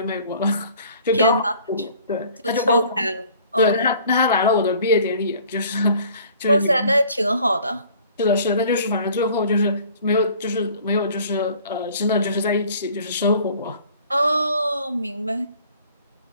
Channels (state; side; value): inverted; both; correlation -0.52